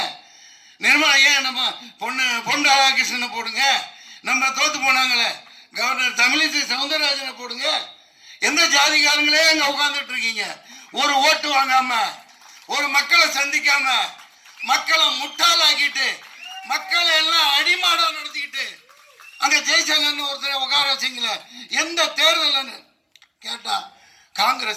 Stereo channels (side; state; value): both; identical; correlation 1.00